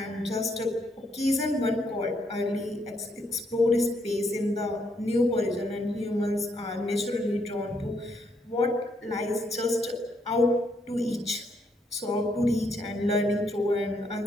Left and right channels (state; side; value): normal; both; correlation 0.74